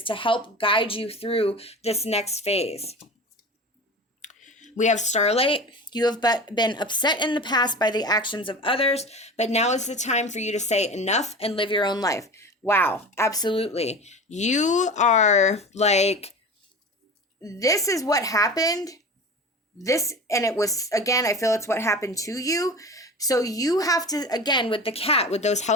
to help guide you through this next phase. We have starlight. You have been upset in the past by the actions of others, but now is the time for you to say enough and live your own life. Wow, absolutely. You are like, this is what happened. And it was, again, I feel it's what happened to you. So you have to, again, with the cat, with those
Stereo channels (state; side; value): normal; both; correlation 0.33